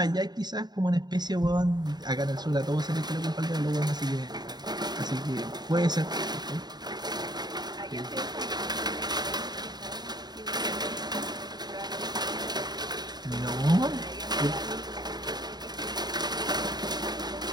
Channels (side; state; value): left; late; 0.20 ms